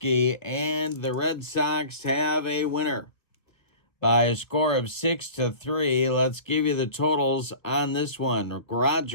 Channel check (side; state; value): right; late; 1.4 ms